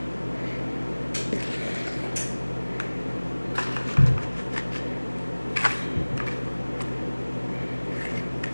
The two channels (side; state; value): both; inverted; correlation -1.00